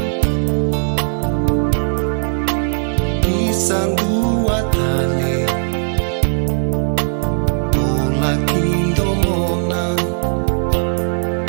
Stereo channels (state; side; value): silent; left; digital silence